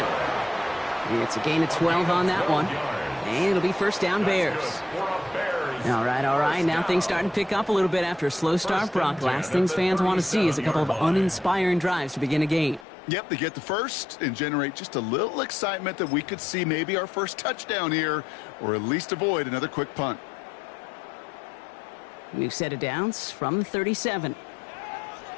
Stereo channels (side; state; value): right; drops out; at 12.9 s